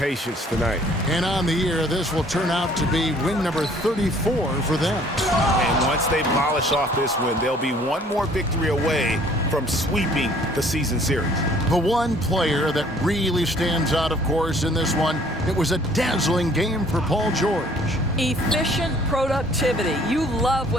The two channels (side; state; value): both; normal; correlation 0.57